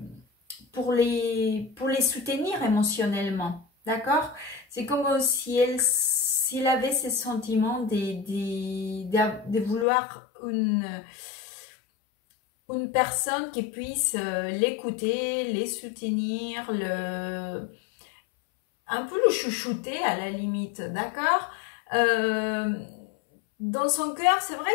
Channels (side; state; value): right; drops out; at 9.9 s